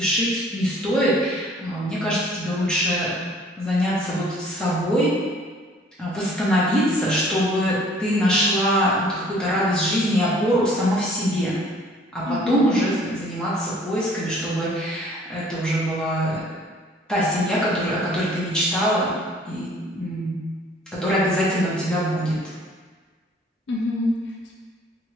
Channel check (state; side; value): normal; both; correlation 0.55